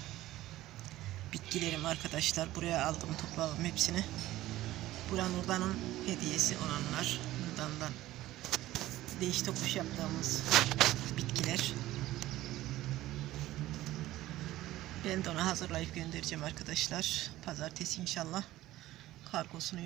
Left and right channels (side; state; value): left; quieter; 15.8 dB